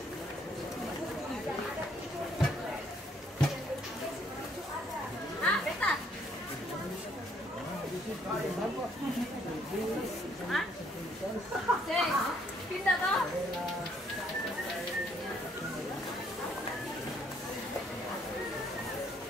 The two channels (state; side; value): normal; both; correlation 0.66